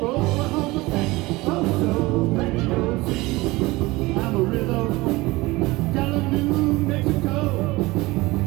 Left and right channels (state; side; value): quieter; left; 21.1 dB